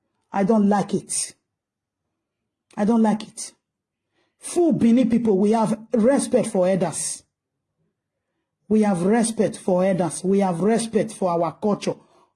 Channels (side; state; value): both; identical; correlation 1.00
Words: I don't like it. I don't like it. Full Bini people, we have respect for elders. We have respect for elders. We have respect for our culture,